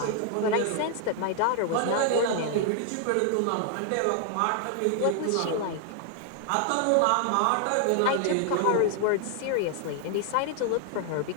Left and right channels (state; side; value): different; both; correlation 0.00